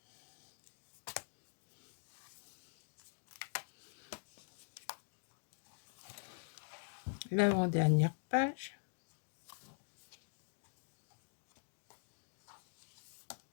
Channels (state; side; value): silent; right; digital silence